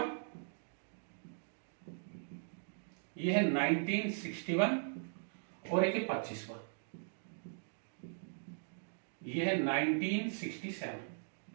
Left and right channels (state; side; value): silent; left; digital silence